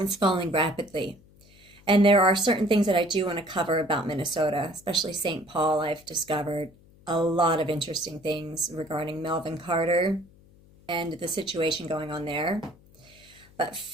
falling rapidly. And there are certain things that I do want to cover about Minnesota, especially St. Paul. I've discovered a lot of interesting things regarding Melvin Carter and the situation going on there. But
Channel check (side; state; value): left; noise; hum, 26 dB below the sound